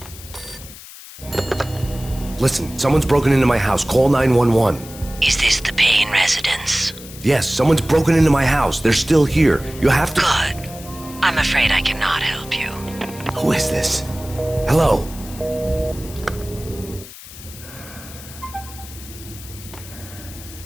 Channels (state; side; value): noise; left; hiss, 16 dB below the sound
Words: Listen, someone's broken into my house. Call 911. Is this the Payne residence? Yes, someone's broken into my house. They're still here. You have to... Good. I'm afraid I cannot help you. Who is this? Hello?